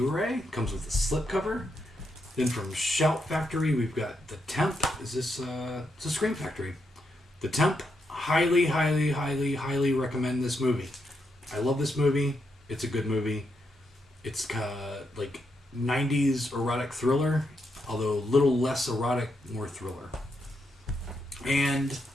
Comes with a slipcover. Then from Shout Factory, we've got The Temp. It's a Scream Factory. The Temp. Highly, highly, highly, highly recommend this movie. I love this movie. It's a good movie. It's like 90s erotic thriller, although a little less erotic, more thriller. And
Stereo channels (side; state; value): both; normal; correlation 0.81